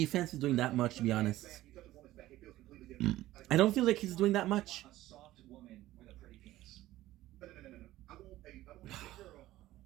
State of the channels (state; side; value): quieter; left; 15.6 dB